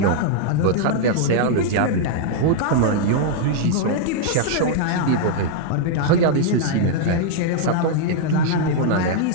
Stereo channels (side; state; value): both; different; correlation -0.01